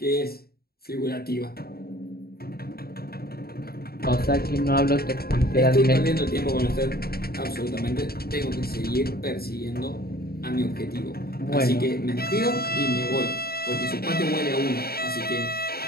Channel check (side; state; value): right; late; 0.45 ms